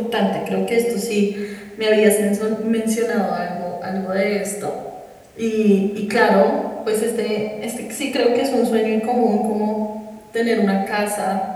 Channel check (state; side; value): identical; both; correlation 1.00